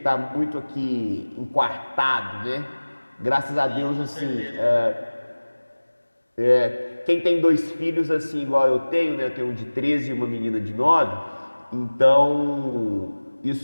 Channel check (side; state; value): both; inverted; correlation -1.00